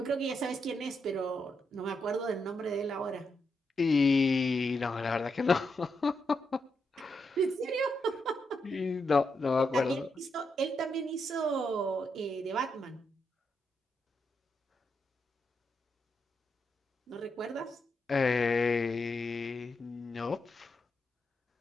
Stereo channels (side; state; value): both; normal; correlation 0.82